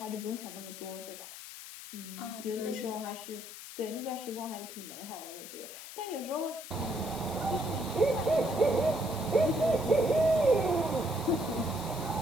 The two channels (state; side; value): noise; left; hiss, 12 dB below the sound